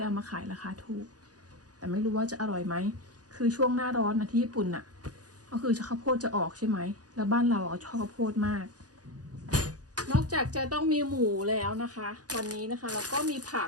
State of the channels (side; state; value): left; late; 0.68 ms